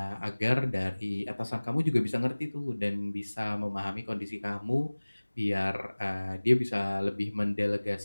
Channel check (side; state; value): both; inverted; correlation -1.00